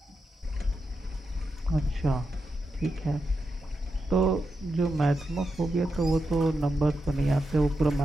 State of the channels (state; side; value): normal; both; correlation 0.87